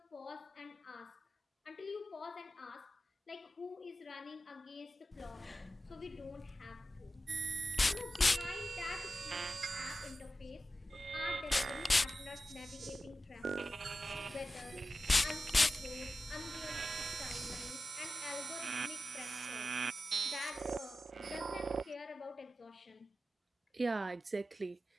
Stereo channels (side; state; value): both; normal; correlation 0.93